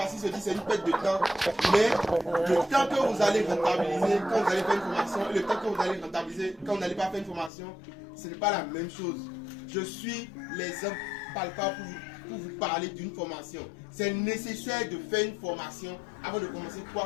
qu'ils se disent que c'est une perte de temps. Mais le temps que vous allez rentabiliser quand vous allez faire une formation et le temps que vous allez rentabiliser quand vous n'allez pas faire une formation, ce n'est pas la même chose. Je suis l'exemple palpable pour vous parler d'une formation. C'est nécessaire de faire une formation avant de commencer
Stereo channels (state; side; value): drops out; right; at 7.5 s